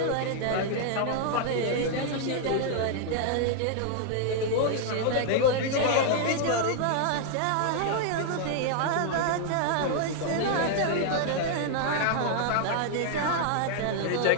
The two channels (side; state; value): both; different; correlation 0.00